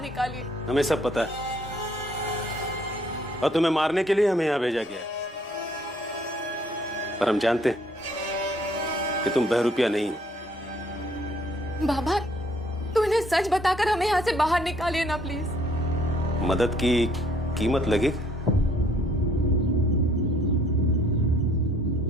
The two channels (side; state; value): both; normal; correlation 0.63